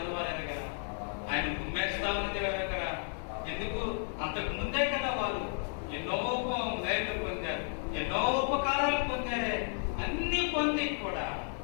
వారు ఎరగరా, ఆయన గుమ్మేస్తా ఉన్నది ఎరగరా. ఎందుకు? అంతకు ముందే కదా వాళ్ళు ఎన్నో మేలు పొందారు, ఎన్నో ఉపకారాలు పొందారే. అన్ని పొంది కూడా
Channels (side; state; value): right; silent; 56 dB below the other